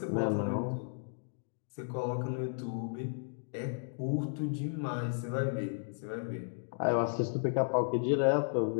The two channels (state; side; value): silent; right; digital silence